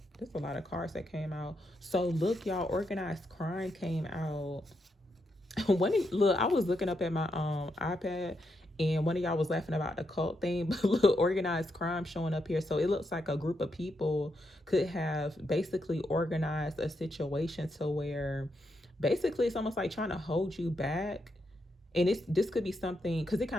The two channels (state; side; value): normal; both; correlation 0.82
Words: There's a lot of cards that came out. So look, y'all, organized crime came out. Look, I was looking up at my iPad, and one of y'all was laughing about the cult thing, but look, organized crime showing up here. So it looks like a group of people could have basically organized a situation to where basically it's almost like trying to hold you back. And this could be something, because it